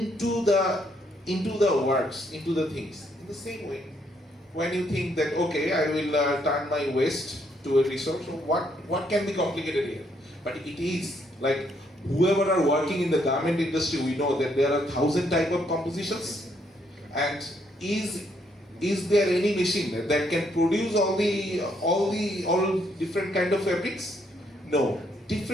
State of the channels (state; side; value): normal; both; correlation 0.72